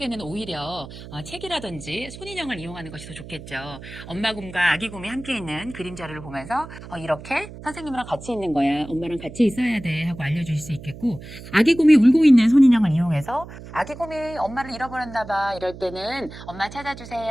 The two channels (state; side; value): noise; right; hum, 14 dB below the sound